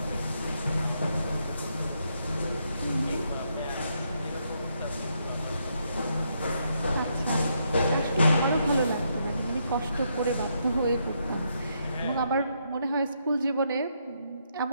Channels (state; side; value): inverted; both; correlation -0.77